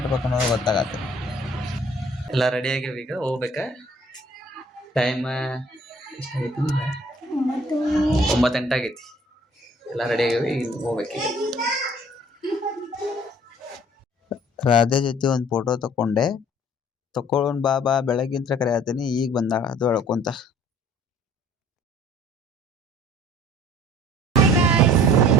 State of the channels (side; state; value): both; normal; correlation 0.54